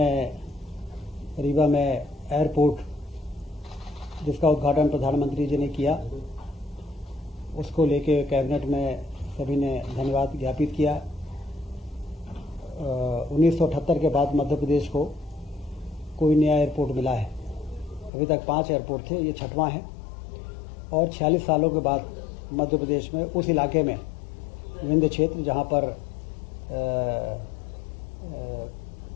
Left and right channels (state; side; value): drops out; right; at 18.1 s